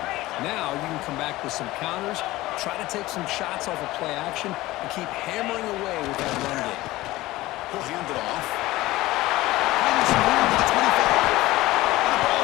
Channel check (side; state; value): right; quieter; 18.0 dB